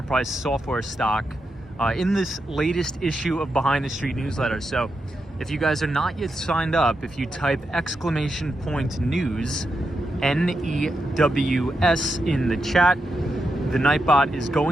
software stock, in this latest issue of Behind the Street newsletter. So if you guys are not yet signed up, if you type !news, NEWS in the chat, the Nightbot is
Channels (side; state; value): both; normal; correlation 0.85